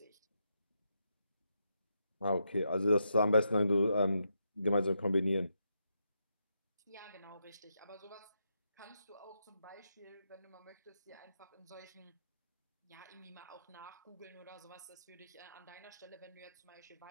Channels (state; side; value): inverted; both; correlation -0.82